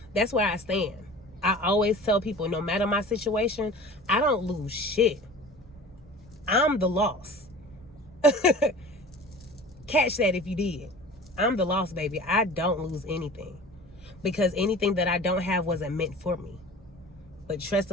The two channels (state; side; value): normal; both; correlation 0.40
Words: I stand. I always tell people, no matter my situation, I don't lose shit. I'm the loss. Catch that if you did. I'm the lost baby. I don't lose anything, because anything that I don't have wasn't meant for me. But trust